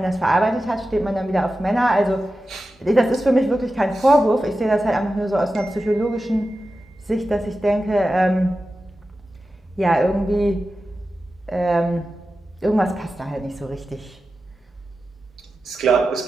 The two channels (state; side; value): normal; both; correlation 0.93